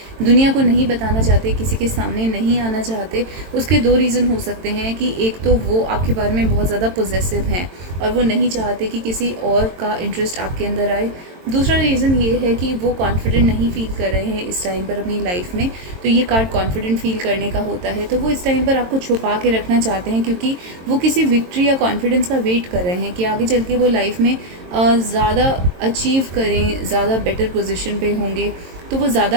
दुनिया को नहीं बताना चाहते, किसी के सामने नहीं आना चाहते। उसके दो रीज़न हो सकते हैं कि एक तो वो आपके बारे में बहुत ज़्यादा पॉजेसिव हैं और वो नहीं चाहते कि किसी और का इंटरेस्ट आपके अंदर आए। दूसरा रीज़न ये है कि वो कॉन्फिडेंट नहीं फील कर रहे हैं इस टाइम पर अपनी लाइफ में। तो ये कार्ड कॉन्फिडेंट फील करने का होता है। तो वो इस टाइम पर आपको छुपा के रखना चाहते हैं, क्योंकि वो किसी विक्ट्री या कॉन्फिडेंस का वेट कर रहे हैं कि आगे चल के वो लाइफ में ज़्यादा अचीव करें, ज़्यादा बेटर पोजीशन पे होंगे। तो वो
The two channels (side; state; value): left; late; 22 ms